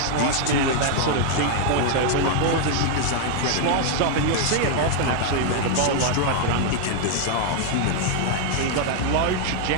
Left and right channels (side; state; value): both; different; correlation 0.00